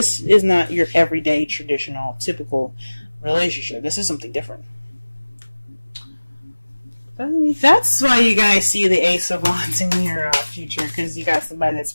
is not your everyday, traditional, typical relationship. This is something different. That's why you guys see the Ace of Wands in your future, because you got somebody that's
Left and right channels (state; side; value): inverted; both; correlation -1.00